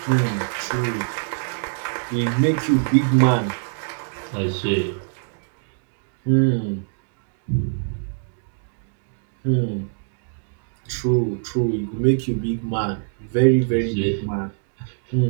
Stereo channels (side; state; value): left; silent; digital silence